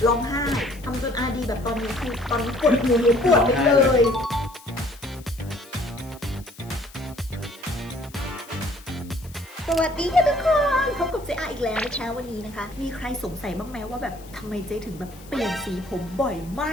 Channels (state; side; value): noise; left; hiss, 23 dB below the sound